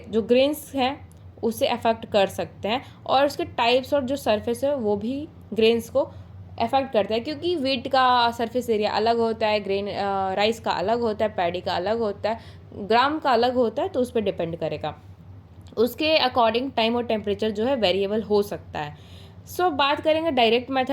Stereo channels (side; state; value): both; identical; correlation 1.00